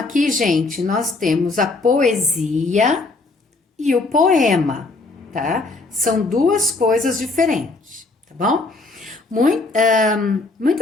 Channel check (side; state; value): right; quieter; 3.4 dB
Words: gente, nós temos a poesia e o poema, tá? São duas coisas diferentes, tá bom?